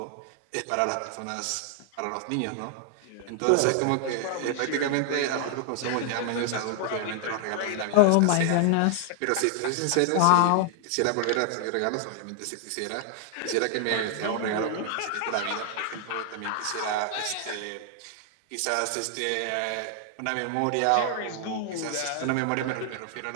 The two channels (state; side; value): different; both; correlation 0.00